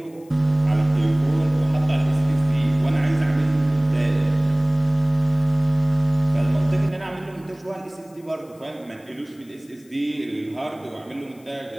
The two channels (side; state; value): left; noise; hiss, 29 dB below the sound